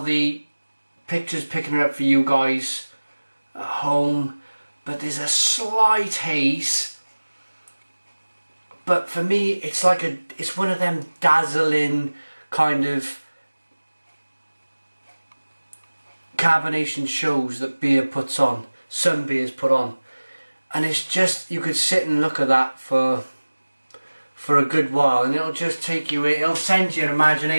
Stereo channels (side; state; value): both; inverted; correlation -1.00